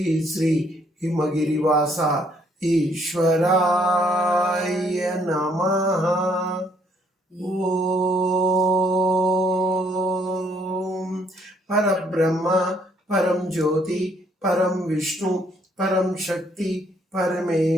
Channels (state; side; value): normal; both; correlation 0.67